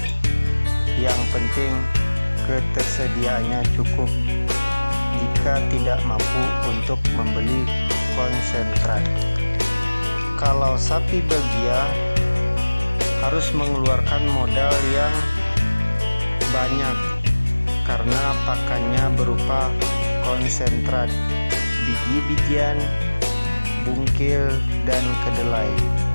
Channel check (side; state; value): both; inverted; correlation -1.00